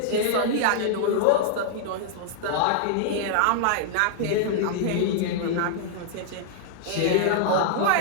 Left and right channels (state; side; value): different; both; correlation -0.01